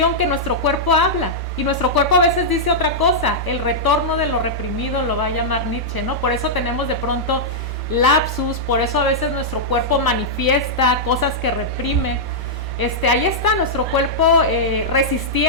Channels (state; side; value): normal; both; correlation -0.09